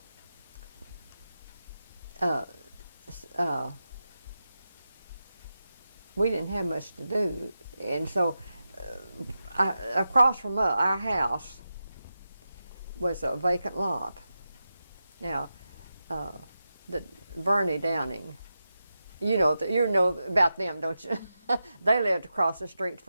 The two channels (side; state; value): both; inverted; correlation -0.90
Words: we didn't have much to do, and so across from our house was a vacant lot. Now, the Vernie Downing, you know about them, don't you? They lived across the street